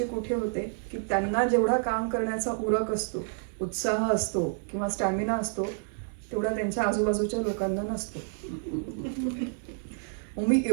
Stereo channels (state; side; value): silent; left; 59 dB below the other